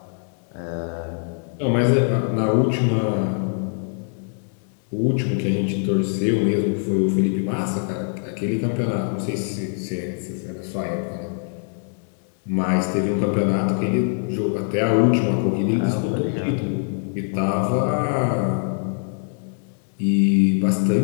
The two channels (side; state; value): right; silent; 55 dB below the other